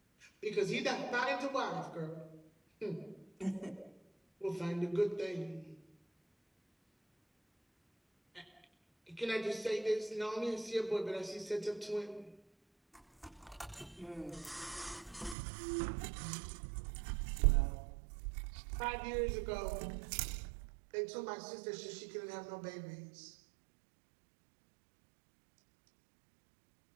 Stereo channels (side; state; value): left; drops out; at 15.4 s